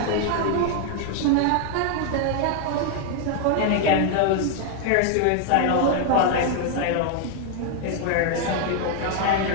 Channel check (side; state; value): both; different; correlation 0.00